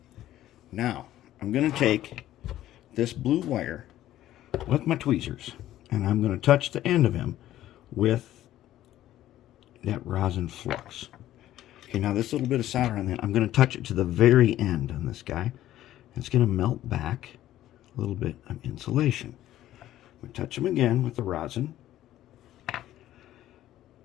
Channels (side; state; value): right; quieter; 13.4 dB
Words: Now I'm going to take this blue wire with my tweezers, and I'm going to touch the end of him with that rosin flux. Okay, now this little bit of solder on that, I'm going to touch it to the very end on this guy. It's going to melt back a little bit of insulation. We touch him again with the rosin.